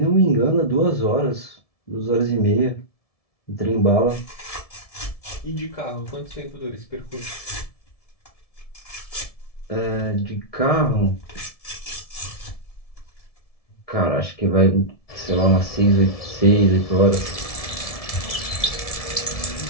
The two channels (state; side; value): late; right; 1.7 ms